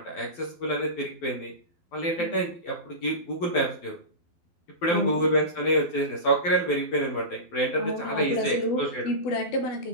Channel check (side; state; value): right; late; 12 ms